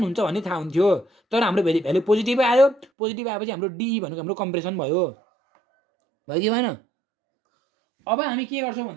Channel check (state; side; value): drops out; left; at 2.9 s